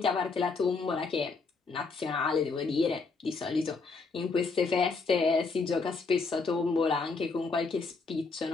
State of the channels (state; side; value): quieter; right; 4.3 dB